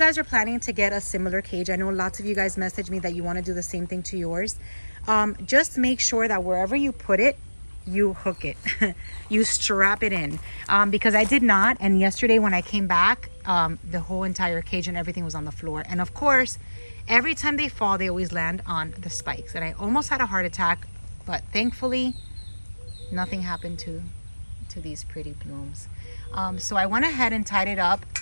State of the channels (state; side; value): inverted; both; correlation -1.00